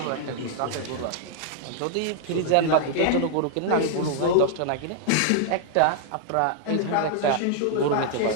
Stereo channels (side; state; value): both; different; correlation 0.00